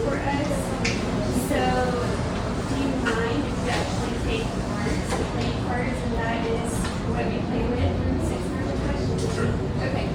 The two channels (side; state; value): both; identical; correlation 1.00